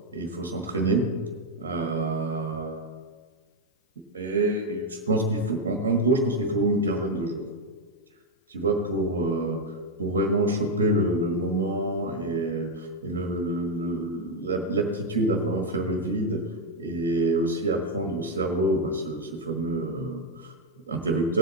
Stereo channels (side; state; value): both; normal; correlation 0.04